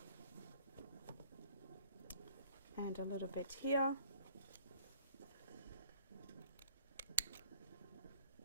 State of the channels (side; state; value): both; inverted; correlation -0.57